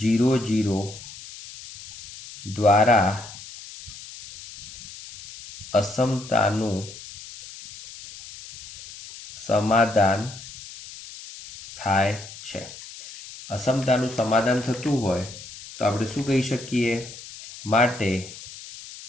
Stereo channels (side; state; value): left; noise; hiss, 15 dB below the sound